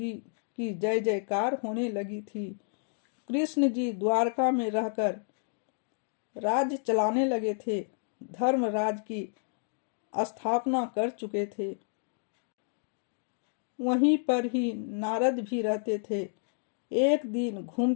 की जय जयकार होने लगी थी। कृष्ण जी द्वारका में रहकर राज्य चलाने लगे थे, धर्मराज की स्थापना कर चुके थे। वहीं पर ही नारद भी रहते थे। एक दिन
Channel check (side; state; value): right; silent; digital silence